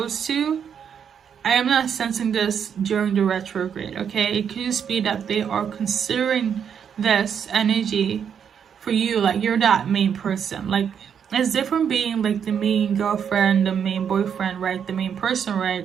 to. I am not sensing this during the retrograde, okay? It could just be that they are considering this energy for you, like you're that main person. Like, it's different being like the main girlfriend, the main boyfriend, right? The main person, right?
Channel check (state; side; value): quieter; left; 7.8 dB